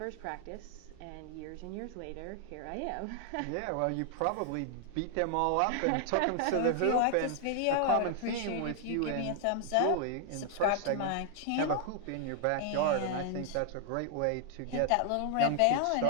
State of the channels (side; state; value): both; different; correlation 0.00